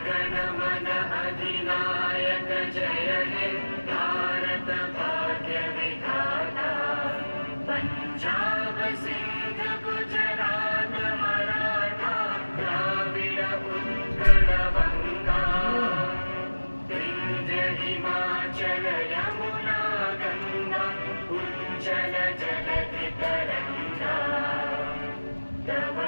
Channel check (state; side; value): inverted; both; correlation -1.00